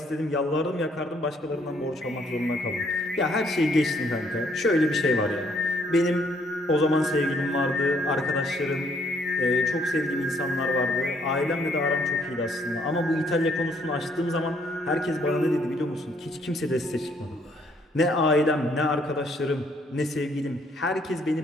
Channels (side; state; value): both; normal; correlation 0.67